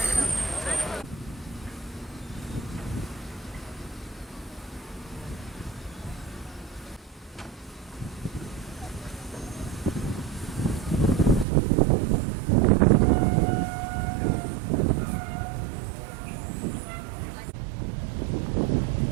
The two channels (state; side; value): drops out; left; at 11.5 s